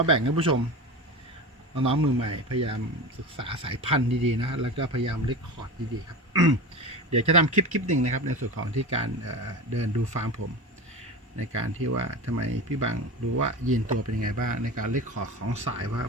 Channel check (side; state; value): both; normal; correlation 0.27